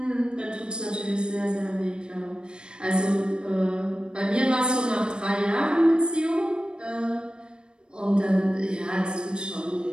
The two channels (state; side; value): late; left; 0.052 ms